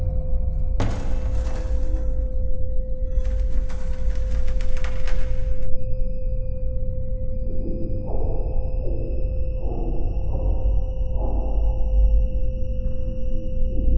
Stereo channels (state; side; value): identical; both; correlation 1.00